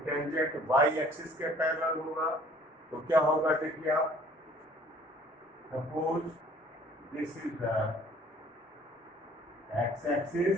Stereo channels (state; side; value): normal; both; correlation 0.54